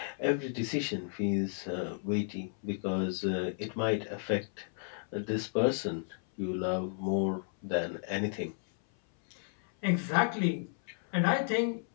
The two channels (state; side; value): silent; right; 56 dB below the other